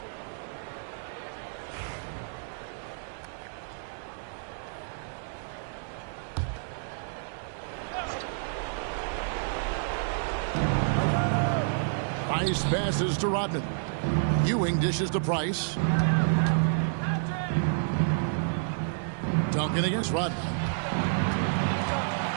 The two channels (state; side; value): silent; left; digital silence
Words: Nice passes to Rodman. Ewing dishes to Price. Duncan against Rodman.